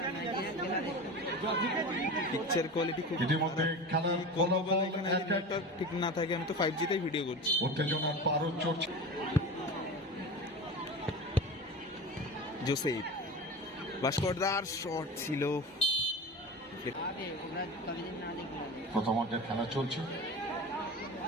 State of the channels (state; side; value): normal; both; correlation 0.30